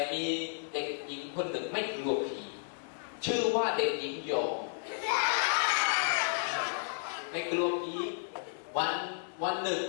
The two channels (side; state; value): right; silent; digital silence